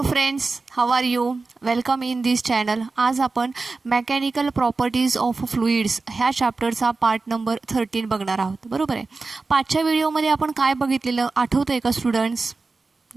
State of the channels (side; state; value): left; quieter; 3.9 dB